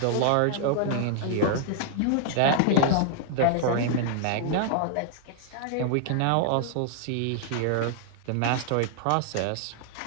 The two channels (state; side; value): different; both; correlation -0.01